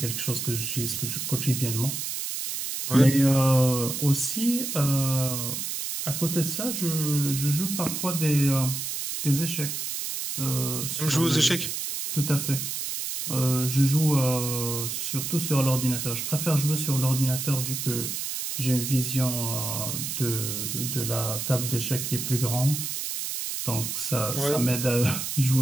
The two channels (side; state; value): right; noise; hiss, 4 dB below the sound